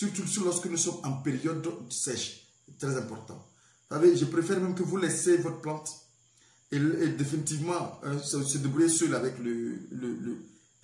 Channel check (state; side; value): identical; both; correlation 1.00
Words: lorsque nous sommes en période sèche. C'est très important. Vous savez, je préfère même que vous laissez votre plante et définitivement se débrouiller seul avec,